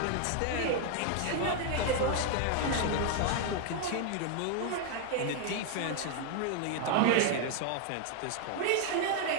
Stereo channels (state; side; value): different; both; correlation 0.00